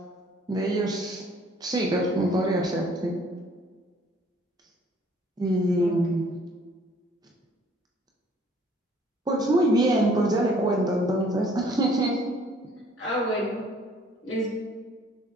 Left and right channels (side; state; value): both; normal; correlation 0.59